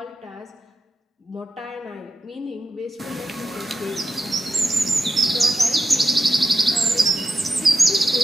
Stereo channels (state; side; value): normal; both; correlation 0.90